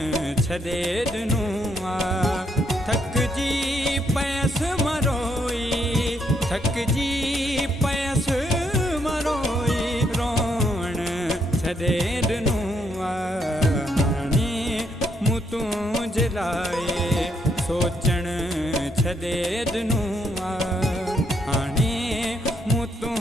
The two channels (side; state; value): both; normal; correlation 0.74